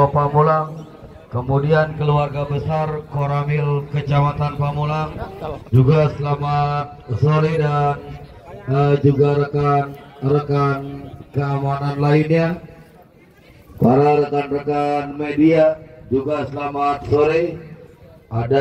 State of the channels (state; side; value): identical; both; correlation 1.00